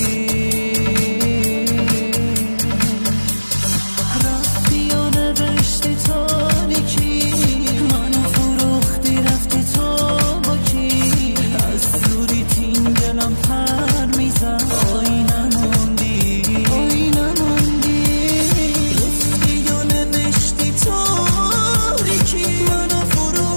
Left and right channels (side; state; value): both; inverted; correlation -1.00